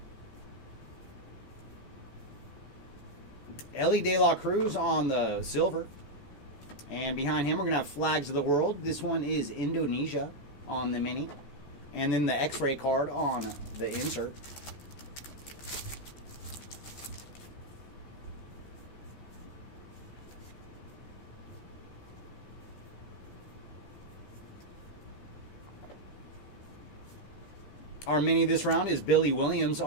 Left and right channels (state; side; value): late; right; 14 ms